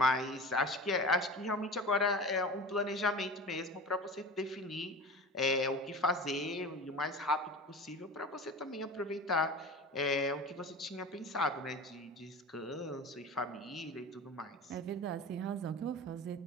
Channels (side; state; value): both; normal; correlation 0.34